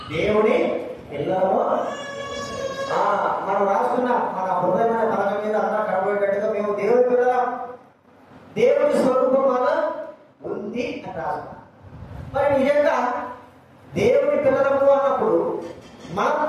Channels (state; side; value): identical; both; correlation 1.00